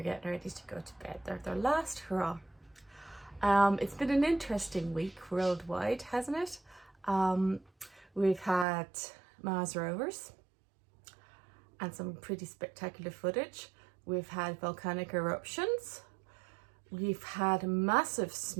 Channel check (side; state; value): left; drops out; at 8.7 s